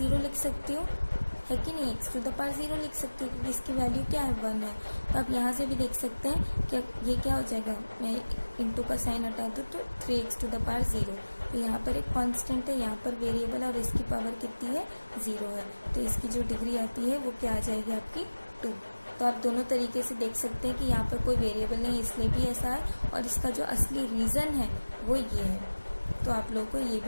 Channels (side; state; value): both; inverted; correlation -1.00